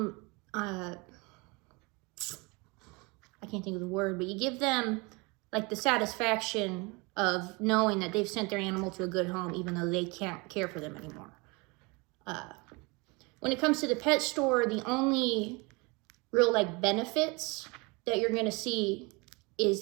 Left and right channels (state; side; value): quieter; left; 27.4 dB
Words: I can't think of the word, but you give them like the satisfaction of knowing that they've sent their animal to a good home, even though they can't care for them anymore. When it comes to the pet store, the only real like benefits that you're gonna see is